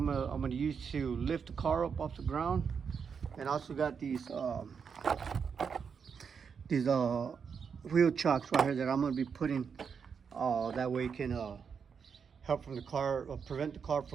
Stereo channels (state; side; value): quieter; left; 6.4 dB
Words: gonna use to lift the car up off the ground, and also got these wheel chocks right here that I'm gonna be putting. That way it can help from the car, prevent the car